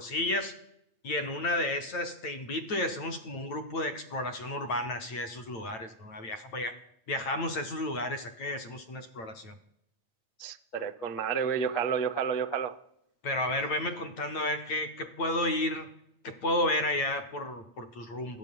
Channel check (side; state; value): right; late; 9.0 ms